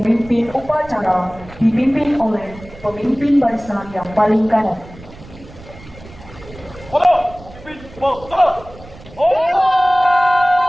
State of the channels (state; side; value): noise; right; rumble, 19 dB below the sound